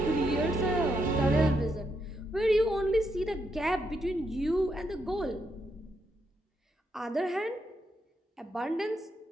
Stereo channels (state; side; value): normal; both; correlation 0.80